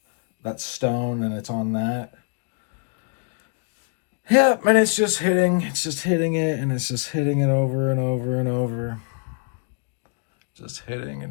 that stone, and it's on that. Yeah, and it's just hitting it, and it's just hitting it over and over and over. Just hitting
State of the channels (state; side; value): quieter; right; 39.6 dB